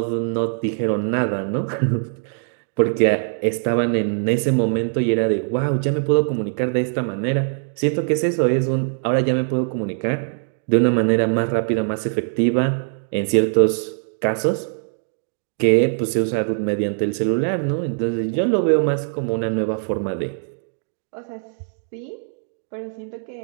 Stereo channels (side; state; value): left; silent; digital silence